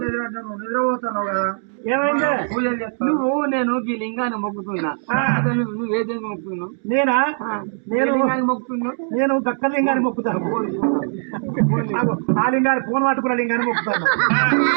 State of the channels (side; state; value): left; silent; digital silence